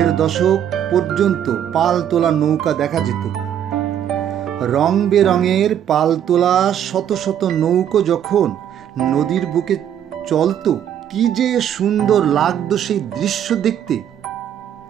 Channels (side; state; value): left; quieter; 9.8 dB